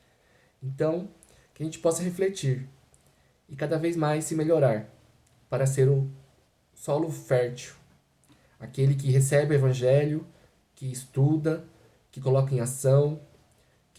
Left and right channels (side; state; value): both; identical; correlation 1.00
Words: Então, que a gente possa refletir e cada vez mais se melhorar para ser o solo fértil. Aquele que recebe o Evangelho, que estuda, que coloca em ação,